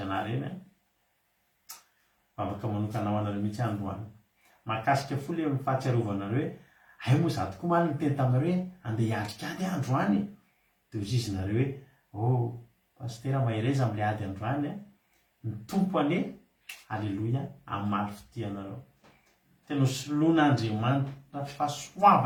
anareo eny afaka manokanao anareo mihitsy androany mahakasika fo le fahatsiarovanareo hoe ay moa za tokoa maly nyteny taminareo hoe andeha hiatrikady androany dia ozy izy nareo hoe pastera mahireza amin'le ady androany ny tompo ane. Halleloia. Amin'ny maly fitianareo tena soloan'Andriamanitra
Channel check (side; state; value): both; identical; correlation 1.00